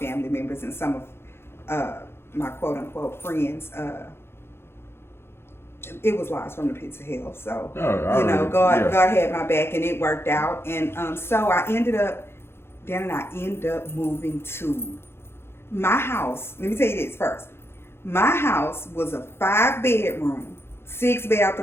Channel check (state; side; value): late; right; 0.12 ms